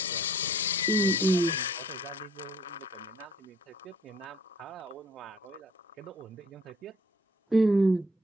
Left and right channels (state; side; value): normal; both; correlation 0.60